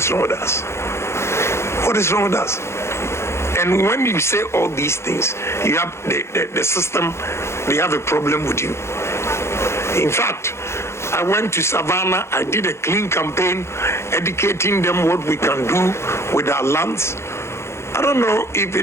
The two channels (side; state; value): right; late; 0.13 ms